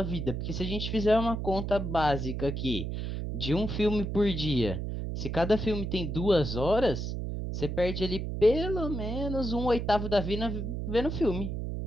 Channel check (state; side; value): noise; right; hum, 3 dB below the sound